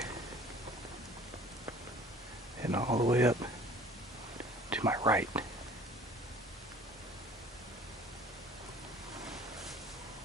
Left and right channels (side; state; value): both; normal; correlation 0.49